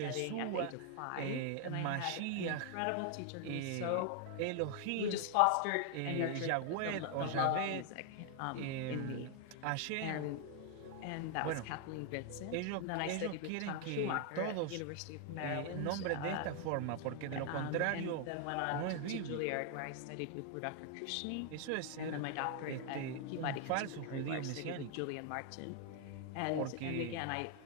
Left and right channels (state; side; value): different; both; correlation 0.00